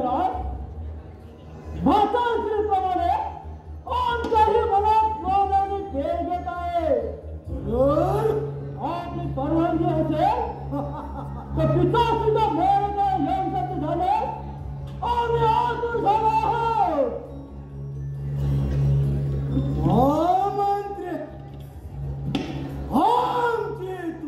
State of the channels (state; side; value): identical; both; correlation 1.00